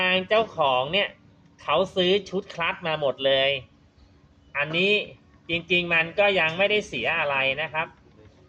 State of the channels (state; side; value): identical; both; correlation 1.00